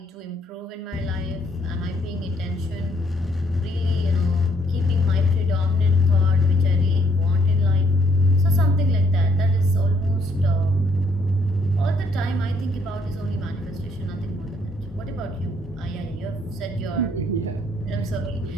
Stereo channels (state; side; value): normal; both; correlation 0.68